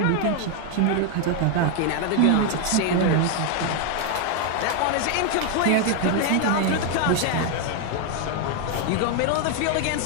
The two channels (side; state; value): both; different; correlation 0.01